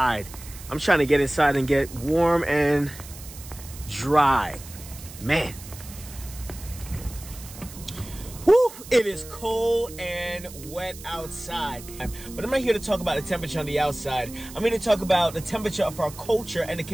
I'm trying to get inside and get warm and dry. Man. Woo! It is cold and wet outside. But I'm not here to talk about the temperature on the outside. I'm here to talk about the temperature of our culture and the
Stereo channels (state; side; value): noise; right; hiss, 16 dB below the sound